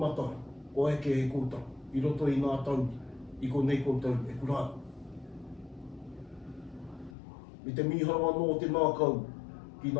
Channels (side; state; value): right; drops out; at 7.2 s